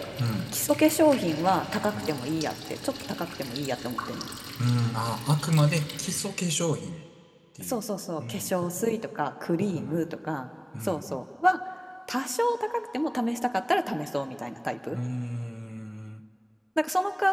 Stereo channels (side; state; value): both; identical; correlation 1.00